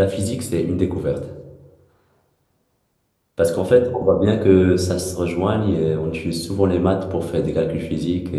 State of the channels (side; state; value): both; identical; correlation 1.00